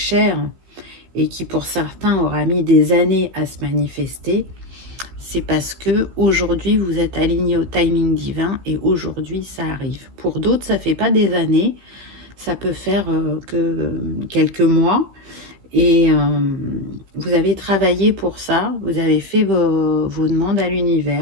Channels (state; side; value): late; left; 15 ms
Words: et qui pour certains aura mis des années à se manifester, c'est parce que aujourd'hui vous êtes aligné au timing divin et aujourd'hui ça arrive. Pour d'autres, ça fait pas des années, ça peut faire que quelques mois et vous avez travaillé pour ça, vous avez fait vos demandes à